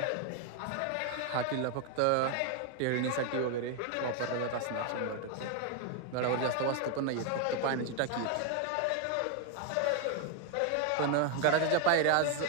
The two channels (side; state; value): both; different; correlation 0.01